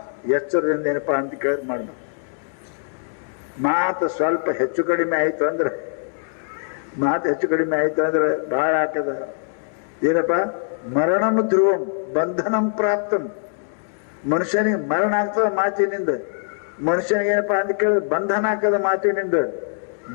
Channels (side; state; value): right; silent; 64 dB below the other